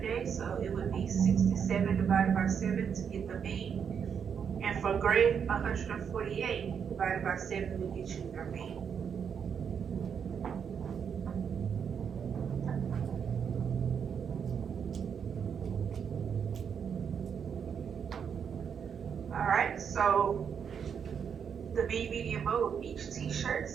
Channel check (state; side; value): quieter; left; 7.3 dB